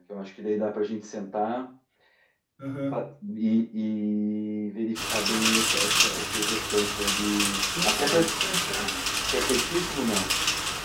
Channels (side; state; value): both; identical; correlation 1.00